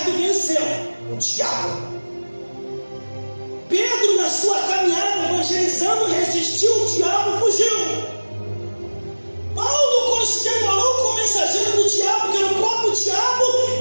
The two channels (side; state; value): both; inverted; correlation -1.00